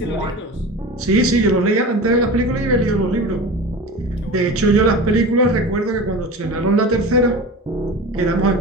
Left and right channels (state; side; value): normal; both; correlation 0.32